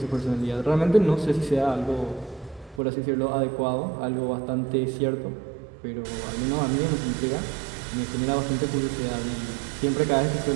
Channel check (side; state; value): left; drops out; at 2.8 s